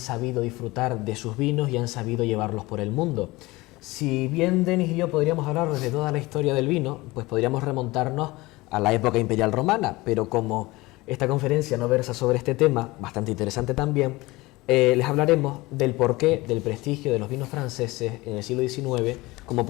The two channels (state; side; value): quieter; right; 21.1 dB